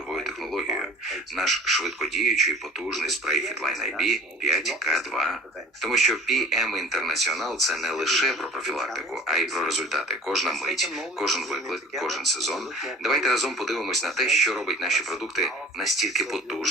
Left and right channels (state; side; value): normal; both; correlation 0.46